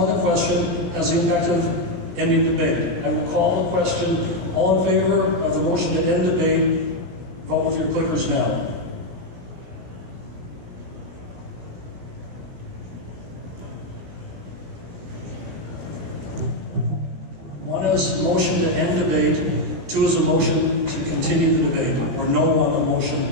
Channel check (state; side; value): late; left; 16 ms